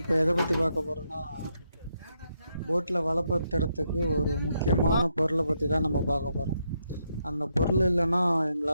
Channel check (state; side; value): inverted; both; correlation -0.80